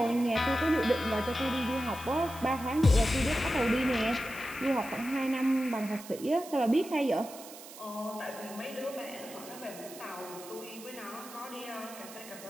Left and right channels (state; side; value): noise; right; hiss, 16 dB below the sound